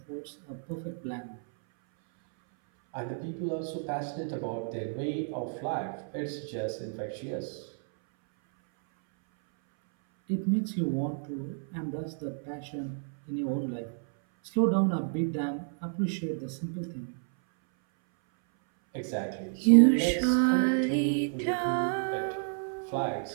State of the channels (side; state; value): left; silent; 57 dB below the other